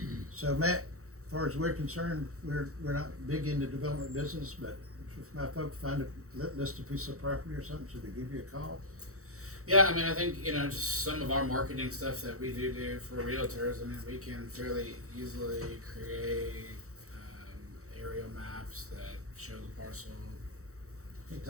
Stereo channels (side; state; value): left; late; 0.65 ms